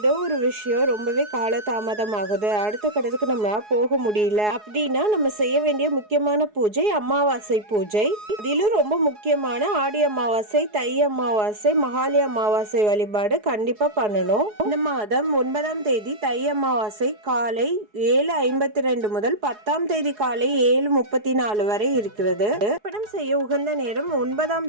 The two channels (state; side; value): late; left; 4.7 ms